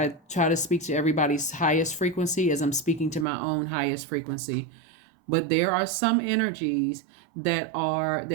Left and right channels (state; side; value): drops out; left; at 3.2 s